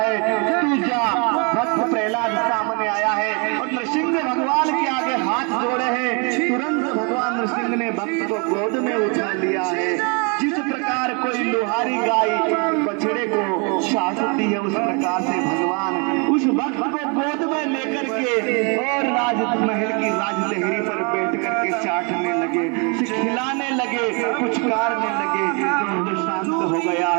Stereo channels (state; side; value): quieter; left; 34.2 dB